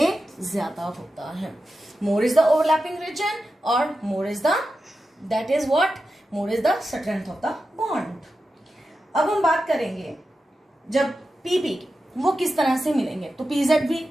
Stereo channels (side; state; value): both; normal; correlation 0.91